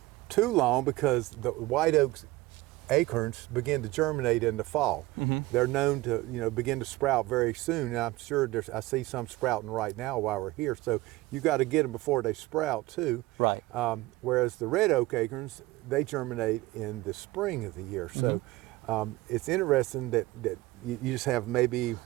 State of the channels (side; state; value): left; quieter; 19.3 dB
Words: too long, because the white oaks acorns begin to germinate in the fall. They're known to begin to sprout very soon, and I'm sure I see some sprouting right now while we're here, so you got to get them before they sprout too. Right. Whereas the red oak acorns, they germinate in the spring of the year. So it's interesting that you just have maybe